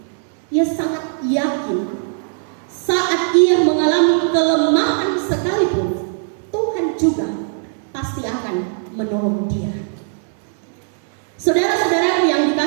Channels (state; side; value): silent; left; digital silence